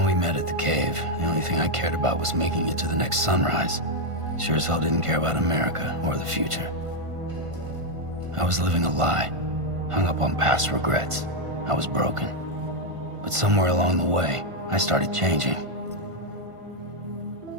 we met at the cave, the only thing I cared about was making it to the next sunrise. Sure as hell didn't care about America or the future. I was living a lie, hung up on past regrets. I was broken. But somewhere along the way, I started changing.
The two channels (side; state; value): left; late; 1.5 ms